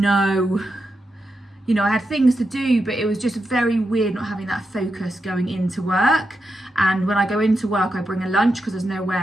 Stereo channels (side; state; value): both; normal; correlation 0.86